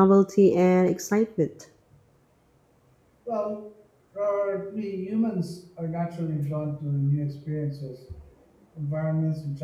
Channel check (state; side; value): identical; both; correlation 1.00